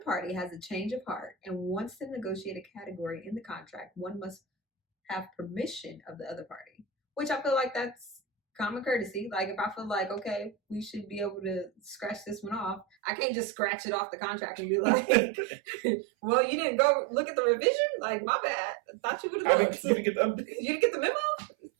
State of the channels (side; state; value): left; drops out; at 12.9 s